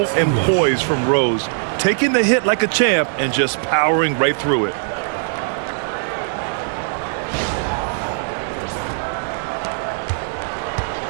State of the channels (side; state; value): left; silent; digital silence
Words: and poise from Rose. Taking the hit like a champ and just powering right through it.